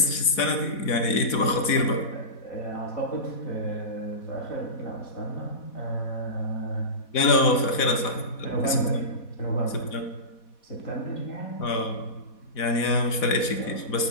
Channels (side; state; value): right; late; 4.1 ms